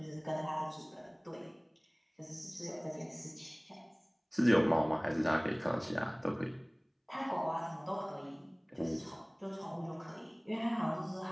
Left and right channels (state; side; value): identical; both; correlation 1.00